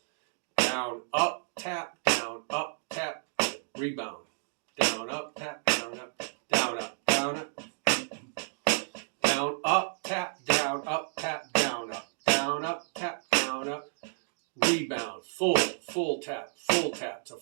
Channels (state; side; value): silent; left; digital silence